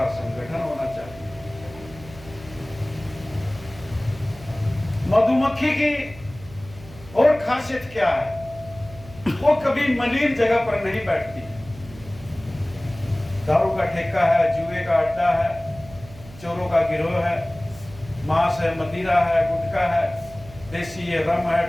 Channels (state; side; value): noise; right; hum, 18 dB below the sound